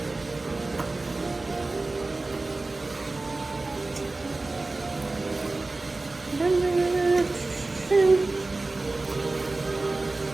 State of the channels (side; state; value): left; quieter; 3.3 dB